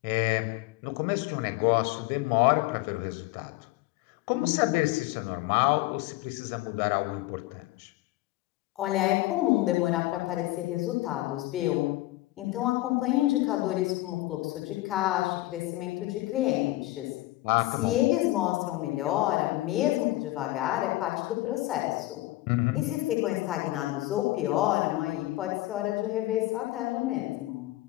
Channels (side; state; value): right; quieter; 17.9 dB